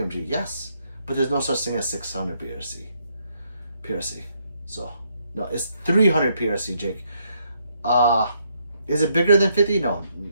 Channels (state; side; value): inverted; both; correlation -0.74